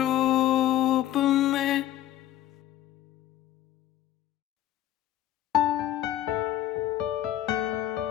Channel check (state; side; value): quieter; right; 12.9 dB